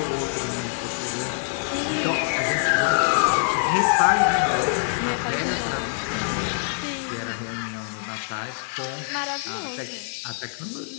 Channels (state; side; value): silent; right; digital silence